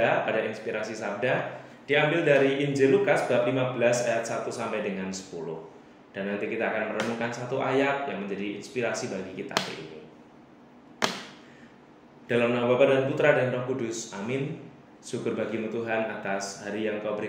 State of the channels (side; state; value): both; identical; correlation 1.00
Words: pada Inspirasi Sabda, diambil dari Injil Lukas bab 15 ayat 1 sampai dengan 10. Dan nanti kita akan merenungkan satu ayat yang menjadi inspirasi bagi kita hari ini. Dalam nama Bapa dan Putra dan Roh Kudus, amin. Syukur bagimu Tuhan atas hari yang Kau